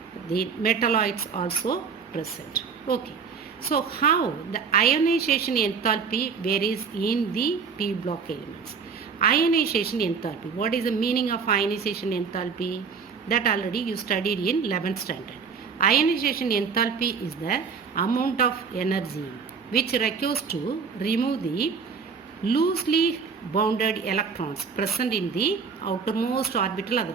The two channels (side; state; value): left; quieter; 5.7 dB